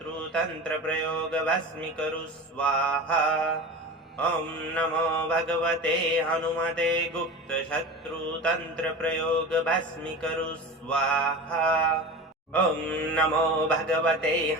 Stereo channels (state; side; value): normal; both; correlation 0.31